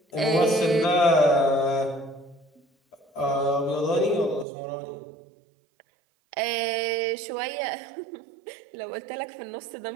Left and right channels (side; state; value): left; drops out; at 4.5 s